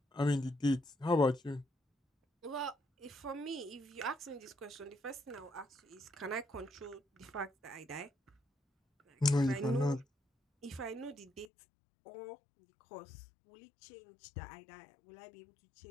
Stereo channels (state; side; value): drops out; right; at 11.5 s